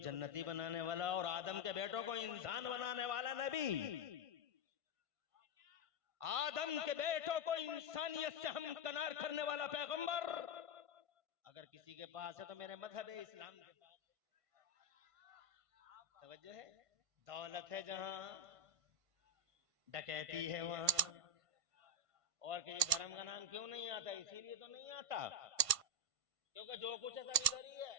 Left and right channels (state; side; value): late; left; 1.5 ms